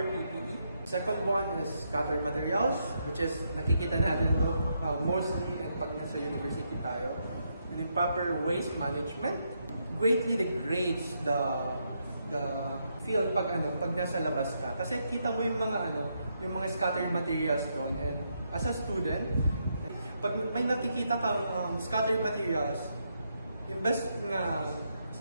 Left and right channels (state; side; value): inverted; both; correlation -0.79